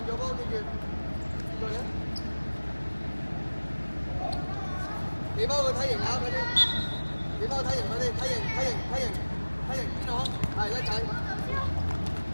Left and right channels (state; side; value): inverted; both; correlation -1.00